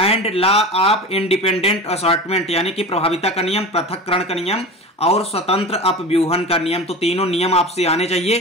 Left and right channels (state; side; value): normal; both; correlation 0.31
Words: law of independent assortment, यानी कि प्रभाविता का नियम, पृथक्करण का नियम और स्वतंत्र अपव्यूहन का नियम। तो तीनों नियम आपसे आने